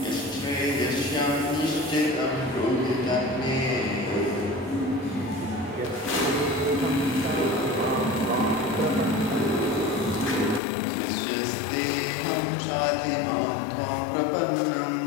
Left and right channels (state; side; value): drops out; right; at 10.6 s